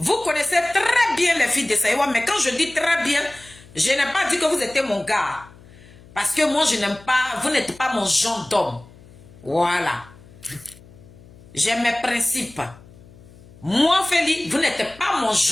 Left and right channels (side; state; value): left; noise; hum, 23 dB below the sound